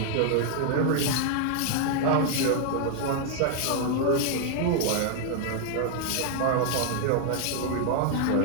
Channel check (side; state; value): both; different; correlation 0.00